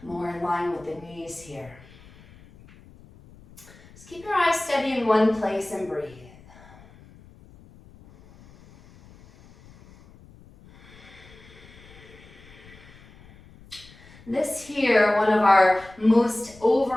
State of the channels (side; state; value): left; noise; rumble, 23 dB below the sound